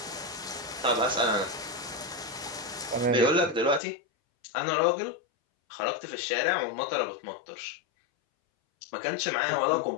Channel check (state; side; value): drops out; right; at 3.8 s